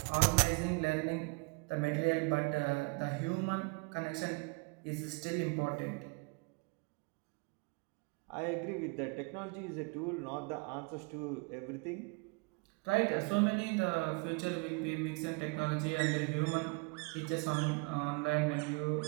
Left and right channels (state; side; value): quieter; left; 31.0 dB